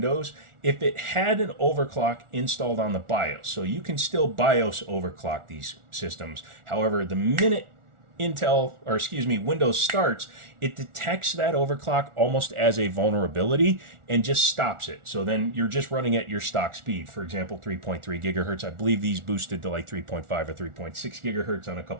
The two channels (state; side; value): late; left; 1.4 ms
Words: if it had an overclock installed on the BIOS, so you can still BIOS overclock these systems. However, the minute Windows starts, it detects that overclock almost as a vulnerability and just stops it. So then you're just running at your stock speed. For example, 3.3 gigahertz. I believe these boosted to like 3.5 or 3.6 gigahertz on a